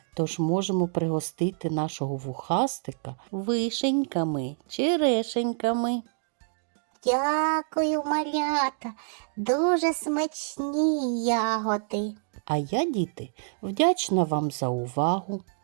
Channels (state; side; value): silent; left; digital silence